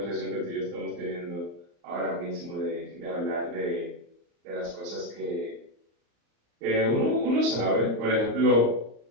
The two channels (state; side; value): late; left; 34 ms